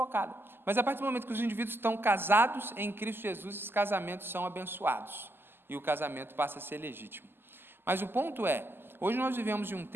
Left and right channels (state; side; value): late; left; 0.10 ms